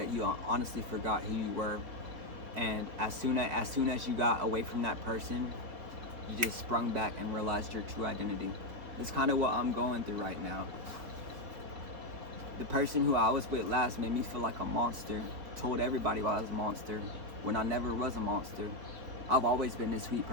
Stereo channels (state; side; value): late; left; 4.4 ms